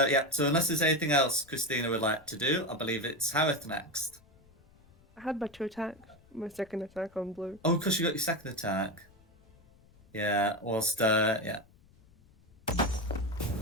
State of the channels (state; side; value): noise; left; rumble, 28 dB below the sound